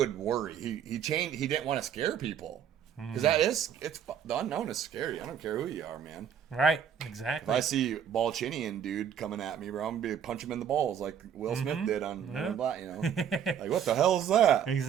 worry. He changed. He didn't want to scare people. Because the unknown is scary. I don't care who you are, man. Right. Exactly. If I see Balchinian dude coming at me, bro, I'm going to punch him in the balls like Will Smith did on Black, you know. Like, what the hell is that?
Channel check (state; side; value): quieter; left; 8.5 dB